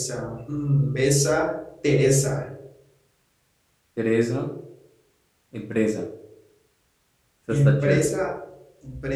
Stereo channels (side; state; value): both; identical; correlation 1.00